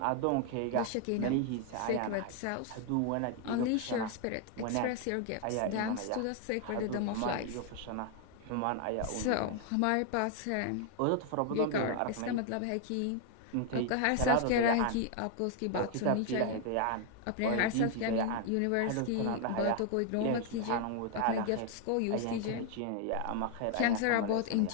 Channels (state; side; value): different; both; correlation 0.00